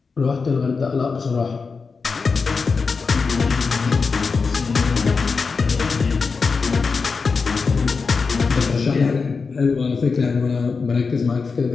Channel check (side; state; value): right; quieter; 4.8 dB